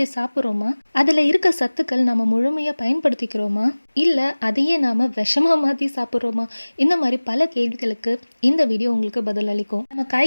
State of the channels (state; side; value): inverted; both; correlation -1.00